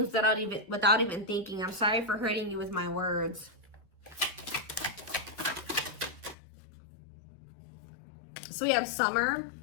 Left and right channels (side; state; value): right; drops out; at 6.4 s